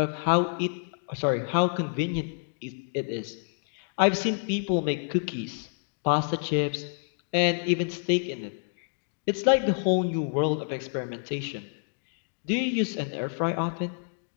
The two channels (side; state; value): right; silent; 59 dB below the other